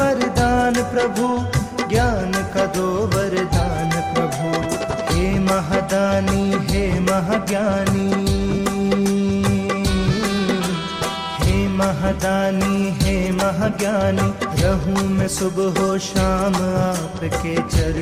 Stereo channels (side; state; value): both; identical; correlation 1.00